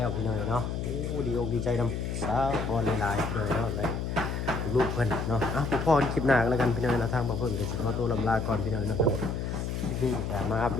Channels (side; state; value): left; noise; hum, 3 dB below the sound